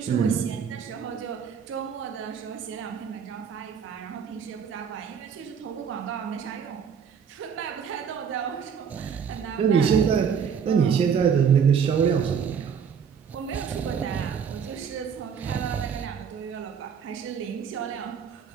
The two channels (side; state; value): left; quieter; 7.1 dB